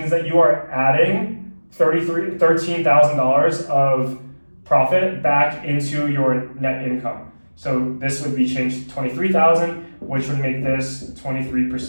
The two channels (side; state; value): both; inverted; correlation -1.00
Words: that you are adding $13,000 of profit back into your net income. So this would be changed to $23,000, which would make this